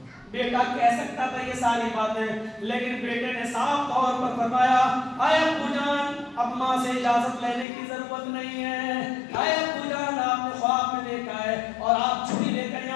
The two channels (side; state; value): right; drops out; at 7.7 s